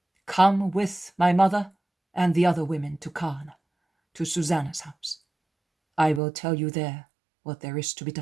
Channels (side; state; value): left; drops out; at 6.2 s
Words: Come with my mother and the other women to Cana, to Susanna's house. I will tell you there what there is to be